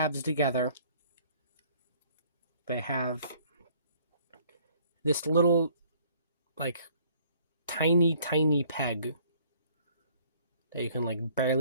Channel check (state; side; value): inverted; both; correlation -0.59